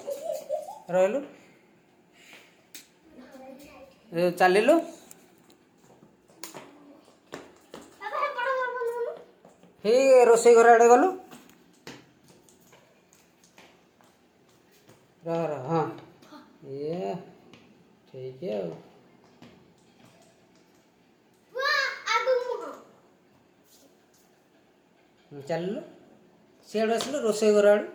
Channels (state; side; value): identical; both; correlation 1.00